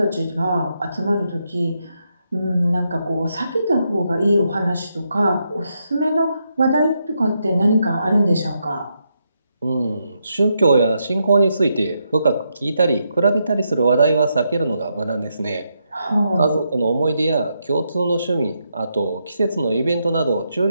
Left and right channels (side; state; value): both; inverted; correlation -0.81